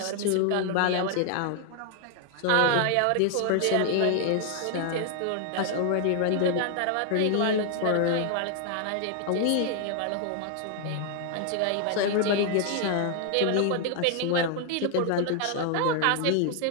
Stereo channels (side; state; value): both; different; correlation 0.00